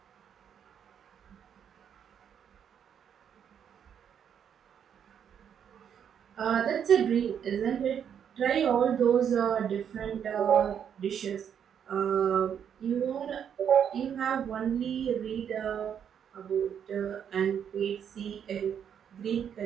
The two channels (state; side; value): quieter; left; 8.4 dB